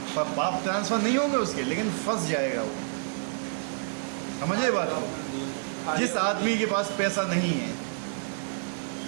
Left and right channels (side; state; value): left; silent; digital silence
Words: पाप ट्रांसफर नहीं होंगे उसके, लेकिन फंस जाएगा वो। समझे बात को? जिस आदमी के पास पैसा नहीं है,